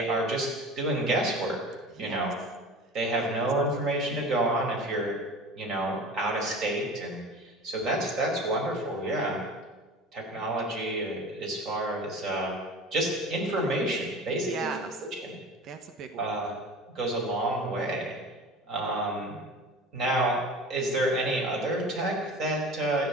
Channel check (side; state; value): both; normal; correlation 0.36